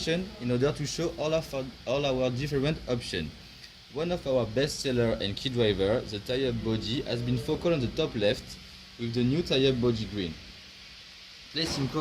in order to show all our different options. One of our best seller and key driver, the tie-up body, has been focal on the top left with the new tie-up body green. Placed in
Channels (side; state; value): both; identical; correlation 1.00